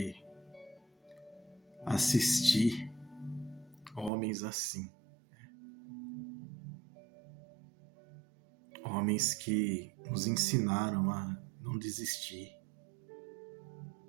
assistir homens assim. Homens que nos ensinaram a não desistir.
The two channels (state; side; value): drops out; left; at 4.1 s